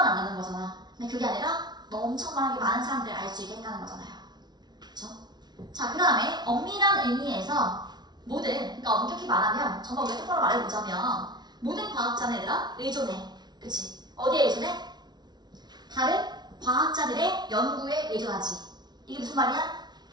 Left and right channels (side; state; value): left; late; 0.20 ms